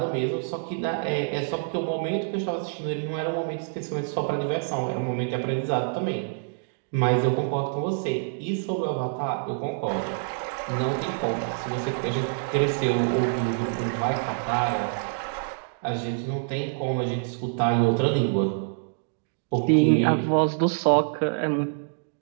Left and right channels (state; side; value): silent; left; digital silence